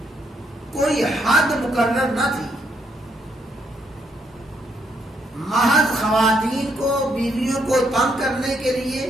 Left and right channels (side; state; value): both; normal; correlation 0.74